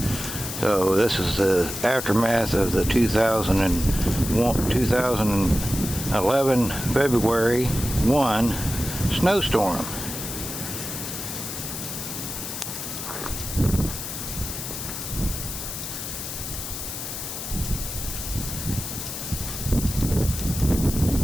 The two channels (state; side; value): noise; left; hiss, 6 dB below the sound